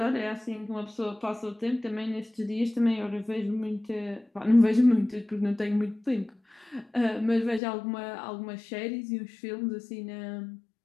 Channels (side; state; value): right; drops out; at 7.6 s